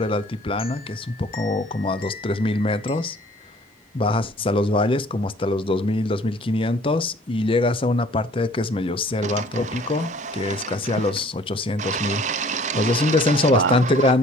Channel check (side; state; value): both; normal; correlation 0.54